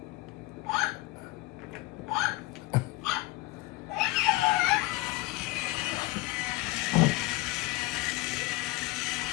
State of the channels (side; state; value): right; quieter; 20.3 dB